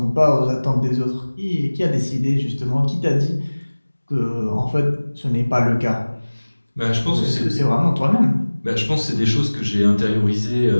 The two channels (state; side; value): inverted; both; correlation -1.00